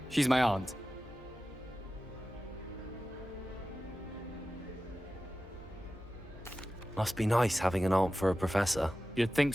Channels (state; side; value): normal; both; correlation 0.94